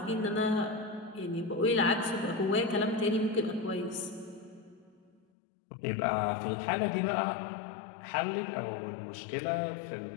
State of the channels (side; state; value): right; drops out; at 5.2 s